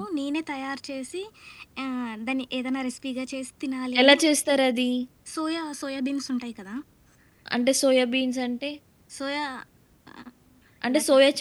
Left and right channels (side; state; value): both; identical; correlation 1.00